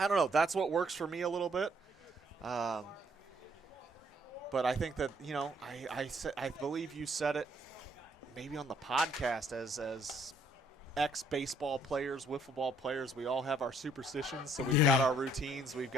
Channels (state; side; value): normal; both; correlation 0.66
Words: don't know. That's what works for me a little bit. But I think that, I believe you said it maybe on the podcast as ex-baseball players, wiffle ball players, we all have our superstitions. So we've got our routines. We've